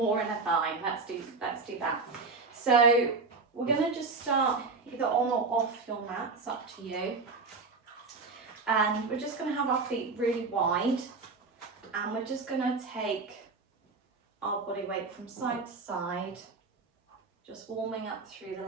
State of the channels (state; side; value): quieter; left; 4.1 dB